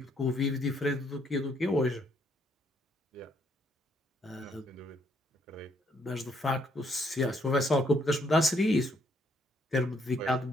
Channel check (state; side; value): normal; both; correlation 0.70